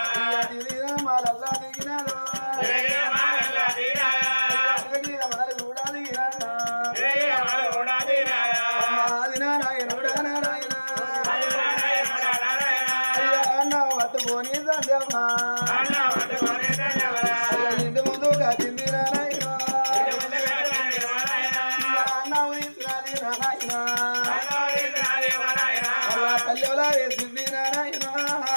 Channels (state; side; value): inverted; both; correlation -1.00